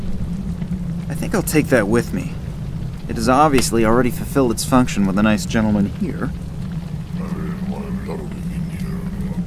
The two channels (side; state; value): both; identical; correlation 1.00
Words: I think I'll take that with me. It has obviously already fulfilled its function with a nice gentleman here.